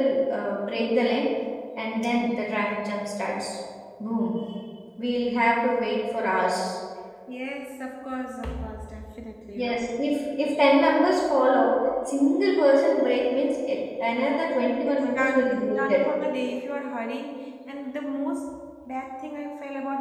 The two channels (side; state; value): both; identical; correlation 1.00